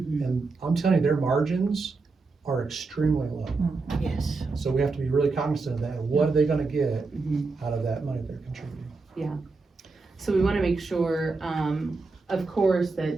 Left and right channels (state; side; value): quieter; left; 4.0 dB